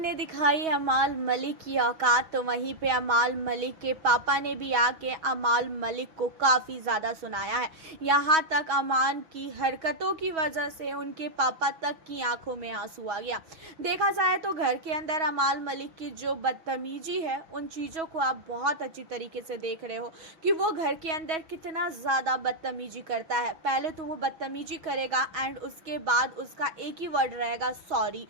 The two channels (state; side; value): late; left; 6.3 ms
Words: दिखाई अमाल मलिक की औकात। तो वहीं पे अमाल मलिक के पापा ने भी आके अमाल मलिक को काफ़ी ज़्यादा सुनाया है। यहाँ तक अमान की हरकतों की वजह से उनके पापा तक की आंखों में आंसू आ गया। देखा जाए तो घर के अंदर अमाल मलिक की जो बदतमीजी है, उन चीज़ों को आप बहुत अच्छी तरीके से देख रहे हो कि वो घर के अंदर कितना ज़्यादा बदतमीजी करता है। पहले तो वो बदतमीजी करेगा एंड उसके बाद उसका एक ही वर्ड रहेगा, सॉरी।